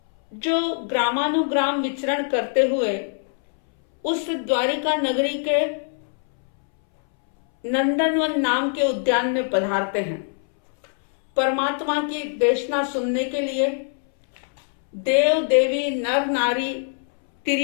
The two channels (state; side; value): silent; right; 64 dB below the other